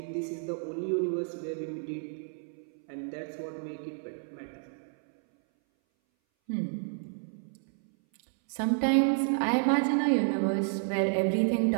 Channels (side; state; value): left; silent; 58 dB below the other